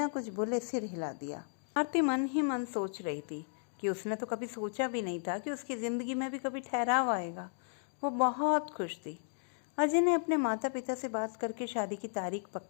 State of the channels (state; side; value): silent; right; digital silence